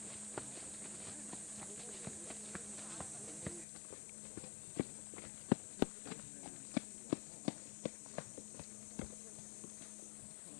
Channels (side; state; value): right; drops out; at 3.7 s